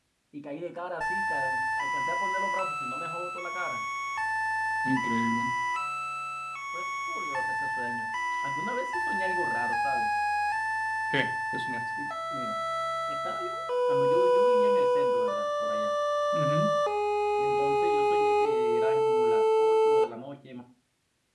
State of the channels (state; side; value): identical; both; correlation 1.00